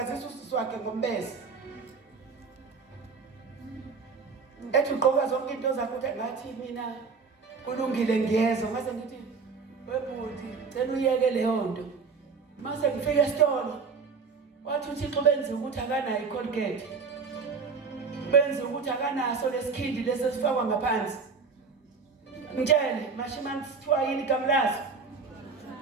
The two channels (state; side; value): quieter; left; 5.0 dB